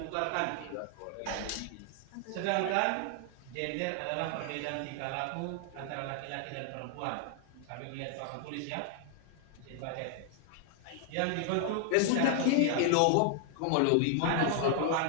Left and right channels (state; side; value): different; both; correlation 0.00